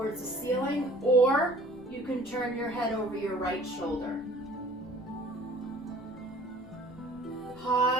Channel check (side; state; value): left; noise; rumble, 21 dB below the sound